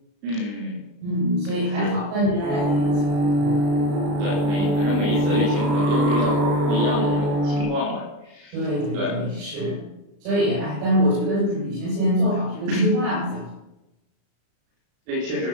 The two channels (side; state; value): left; late; 35 ms